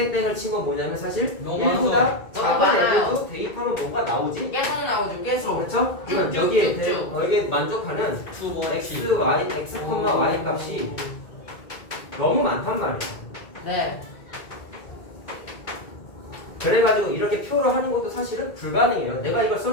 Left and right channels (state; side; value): late; right; 2.2 ms